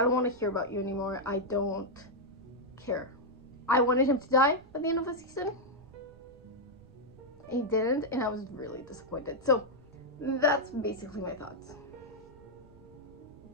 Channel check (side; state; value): right; noise; rumble, 24 dB below the sound